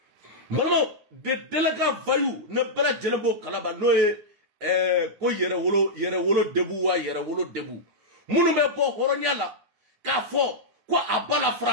Maman, de délégués vaillous ne bela jelembo kalaba no ko yere wolo debu munu be bo horonyala ka fo ko abala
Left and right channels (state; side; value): late; left; 9.6 ms